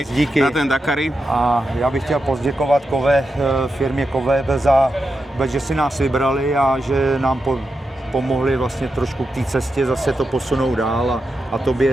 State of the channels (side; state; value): both; normal; correlation 0.88